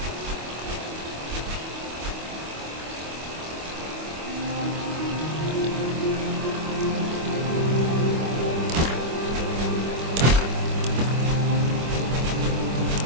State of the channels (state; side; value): late; left; 25 ms